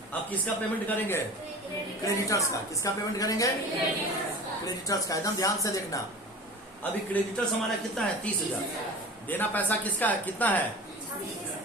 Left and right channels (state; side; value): normal; both; correlation 0.37